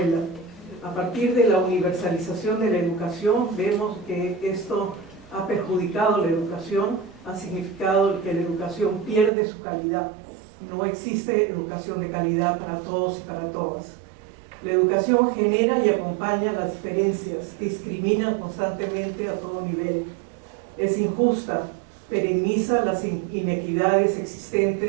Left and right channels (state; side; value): drops out; left; at 9.3 s